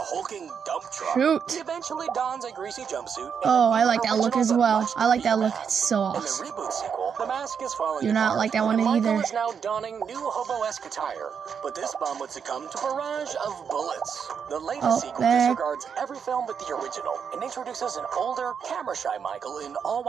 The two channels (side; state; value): left; quieter; 6.9 dB